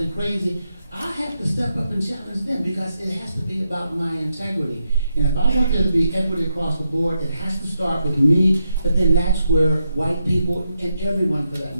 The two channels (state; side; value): inverted; both; correlation -0.84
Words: crazy, I have to step up and challenge them because it has to be about my integrity. And if I want there to be equity across the board, it has to start with me, but then that's where white people, and everyone for that